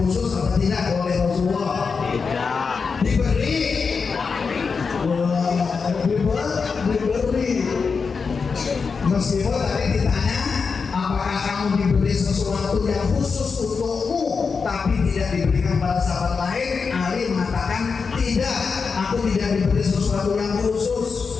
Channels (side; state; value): right; quieter; 5.2 dB